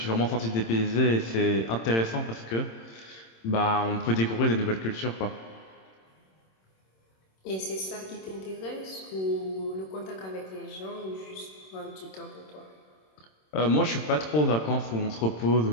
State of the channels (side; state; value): right; late; 26 ms